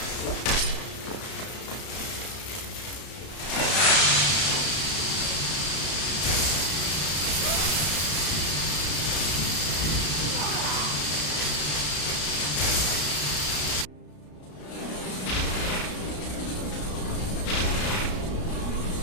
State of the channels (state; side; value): late; right; 33 ms